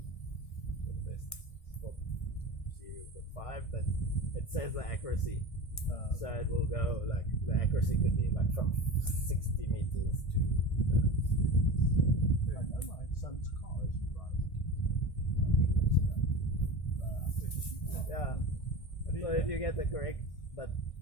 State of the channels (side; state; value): right; late; 1.6 ms